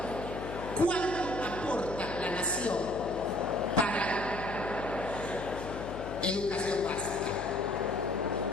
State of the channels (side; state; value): left; noise; hum, 9 dB below the sound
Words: ¿cuánto aporta la nación para educación básica?